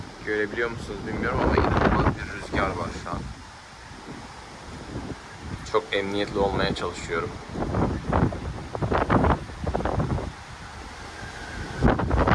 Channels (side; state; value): both; identical; correlation 1.00